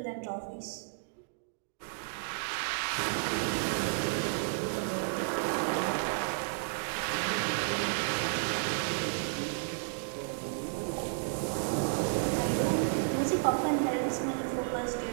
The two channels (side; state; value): left; silent; digital silence